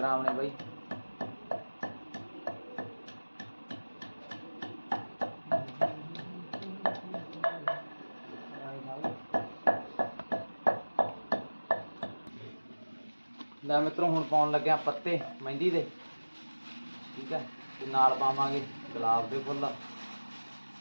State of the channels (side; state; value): both; inverted; correlation -1.00